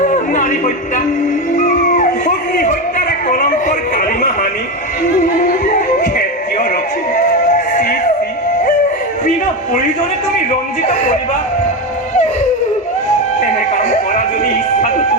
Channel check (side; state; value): both; normal; correlation 0.15